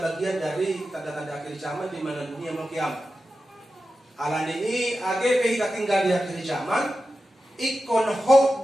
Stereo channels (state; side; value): normal; both; correlation 0.92